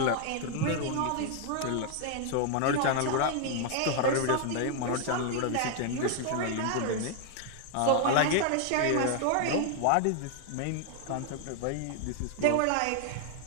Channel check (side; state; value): both; different; correlation 0.00